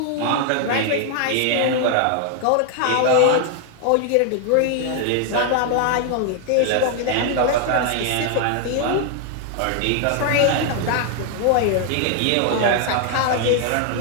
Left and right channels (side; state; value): both; different; correlation 0.00